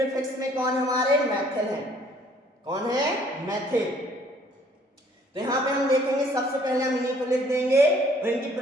में कौन हमारे, मेथिल है। कौन है, मेथिल। तो यहाँ पे हम देखेंगे सबसे पहले हम इन्हीं को लिख देंगे, और इनकी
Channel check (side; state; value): both; normal; correlation 0.60